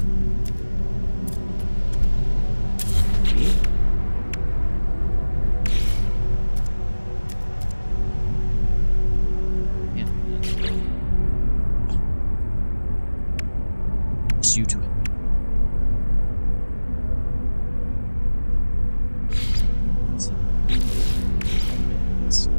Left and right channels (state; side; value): inverted; both; correlation -1.00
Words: Just you to it.